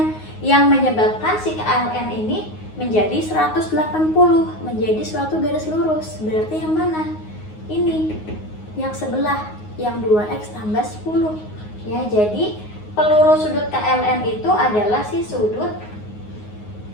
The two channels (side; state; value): right; late; 9.5 ms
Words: yang menyebabkan si KLM ini menjadi 180, menjadi suatu garis lurus. Berarti yang mana? Ini, yang sebelah, yang 2x tambah 10. Ya, jadi peluru sudut KLM itu adalah si sudut